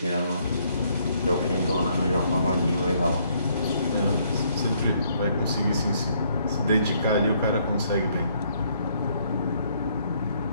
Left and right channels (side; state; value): both; inverted; correlation -0.68